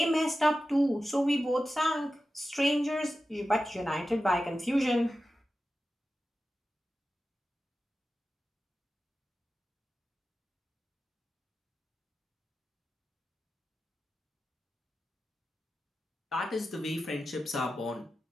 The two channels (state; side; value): normal; both; correlation 0.93